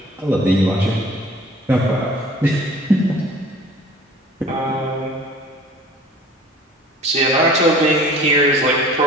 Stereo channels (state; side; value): normal; both; correlation 0.48